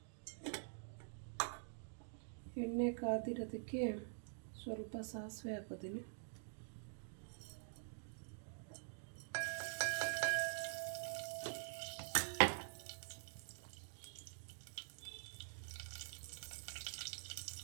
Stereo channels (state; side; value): silent; left; digital silence